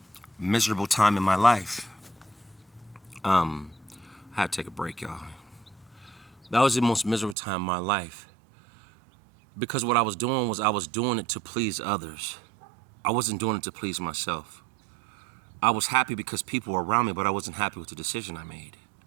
miserable time in my life. I had to take a break, y'all. That was the most miserable time in my life, because what I was doing was I was doing it to please others. I wasn't doing it to please myself. I was happy because people were around me, but I wasn't happy with the decision I made.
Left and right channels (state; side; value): drops out; left; at 7.4 s